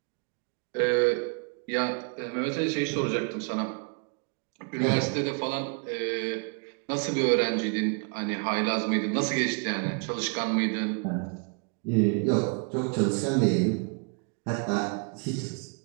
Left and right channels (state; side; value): quieter; left; 37.4 dB